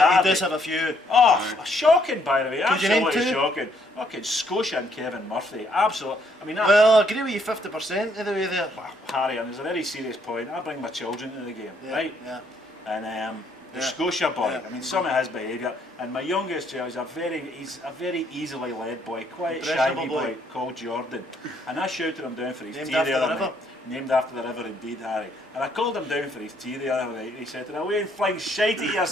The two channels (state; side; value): normal; both; correlation 0.69